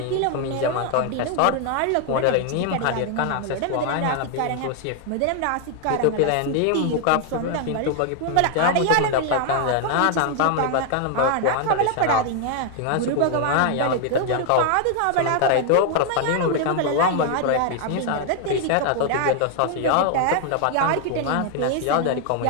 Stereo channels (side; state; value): both; different; correlation 0.00